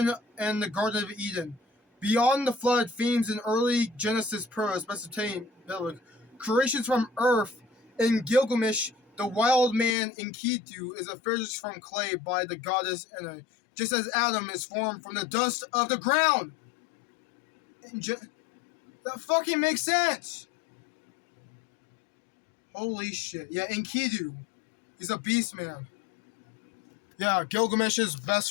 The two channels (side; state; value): right; drops out; at 10.0 s